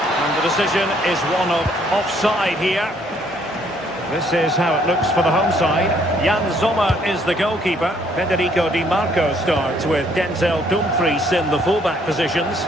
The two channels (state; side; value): normal; both; correlation 0.65